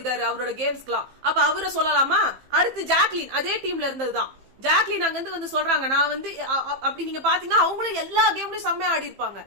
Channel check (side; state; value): left; late; 15 ms